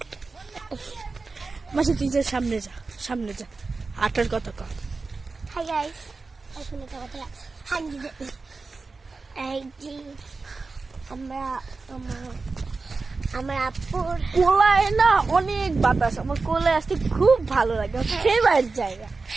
মাসে তুই যে সামনে যা, সামনে যা, আটার কথা কর। হাই গাইস, এখন একটা কথা এই যে আমরা আমার আপুর কোলায় না অনেক বাতাস, আমার কোলায় আসতে খুব ভালো লাগে, ফেভারিট জায়গা।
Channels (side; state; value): left; quieter; 4.0 dB